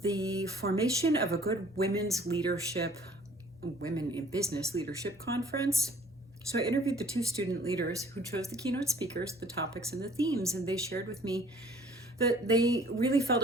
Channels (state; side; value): normal; both; correlation 0.55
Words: formation of a good women in business leadership conference. So I interviewed the two student leaders who chose the keynote speakers, the topics, and the themes, and they shared with me that they really felt